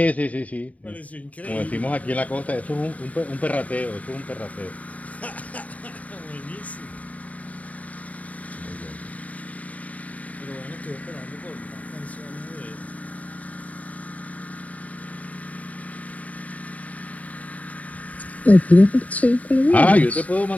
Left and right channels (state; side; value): late; right; 0.070 ms